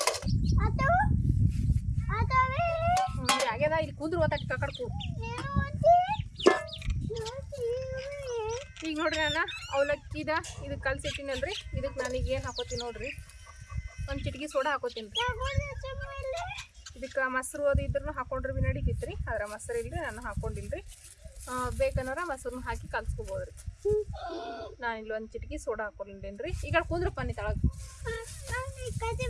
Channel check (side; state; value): both; identical; correlation 1.00